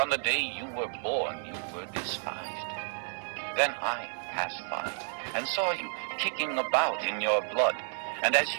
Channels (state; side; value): silent; left; digital silence